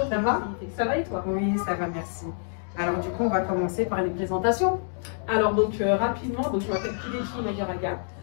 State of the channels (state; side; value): silent; right; digital silence